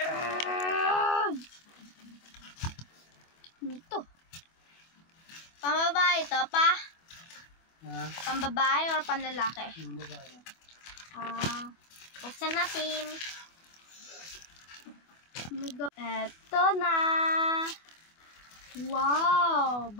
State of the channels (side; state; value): right; late; 24 ms